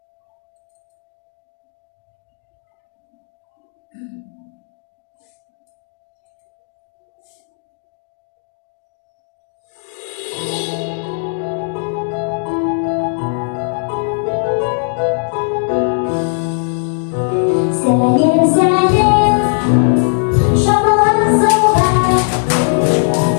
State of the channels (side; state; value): right; silent; digital silence